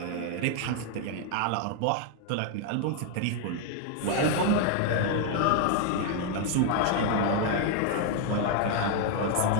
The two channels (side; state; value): both; different; correlation 0.01